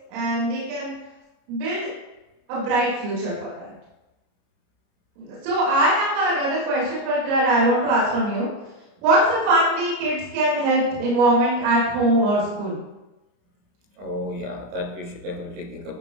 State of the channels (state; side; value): late; left; 29 ms